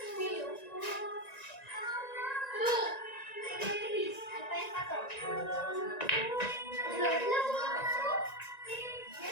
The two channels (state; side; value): late; right; 1.9 ms